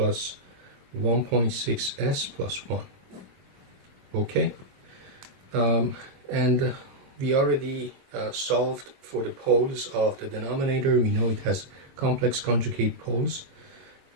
1.6 S plus 1. Okay, and we already solved for the poles of the denominator. We know it has complex conjugate poles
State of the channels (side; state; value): left; late; 22 ms